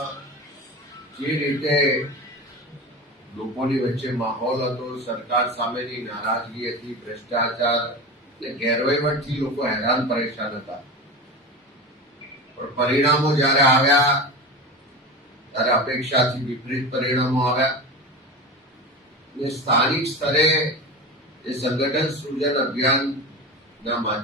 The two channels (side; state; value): both; normal; correlation 0.27